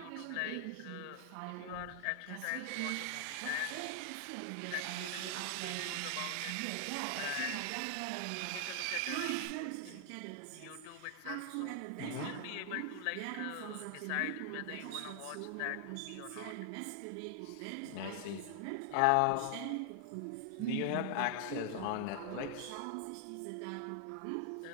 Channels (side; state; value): both; different; correlation 0.00